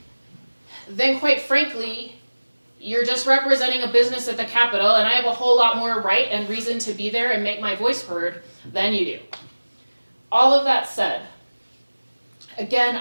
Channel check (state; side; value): inverted; both; correlation -1.00